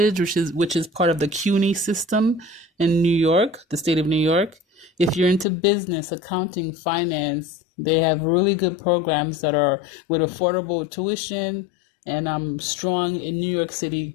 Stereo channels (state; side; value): drops out; right; at 5.5 s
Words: which is part of the CUNY system in New York, the state of New York. If you're into business, accounting, finance, they have really good programs that are with affordable tuition and strong in New York